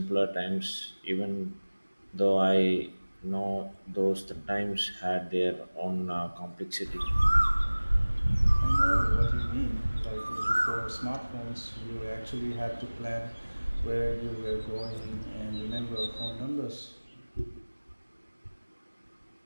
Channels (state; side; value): inverted; both; correlation -1.00